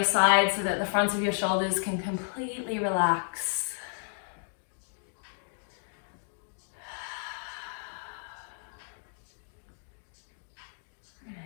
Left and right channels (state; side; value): silent; right; digital silence